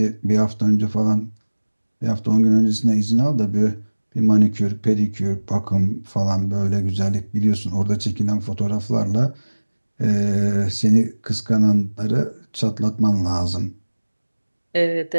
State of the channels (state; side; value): inverted; both; correlation -1.00